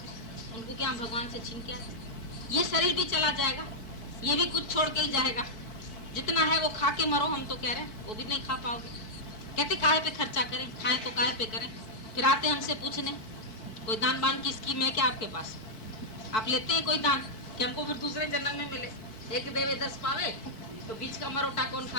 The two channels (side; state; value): right; late; 4.6 ms